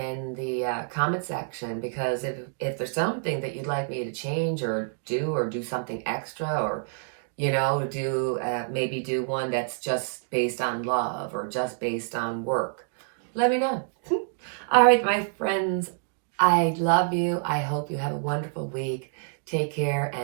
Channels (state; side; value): silent; left; digital silence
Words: the comment section, because if there's something that you'd like me to change or do something extra, or maybe do one that's just based on love or just based on work, let me know. All right, my friends, I love you. I hope you have a wonderful week. Take care